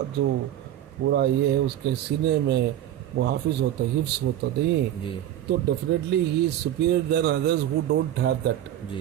جو پورا یہ ہے اس کے سینے میں وہ حافظ ہوتا ہے، حفظ ہوتا نہیں جی تو definitely he is superior than others who don't have that.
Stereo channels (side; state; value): left; quieter; 11.8 dB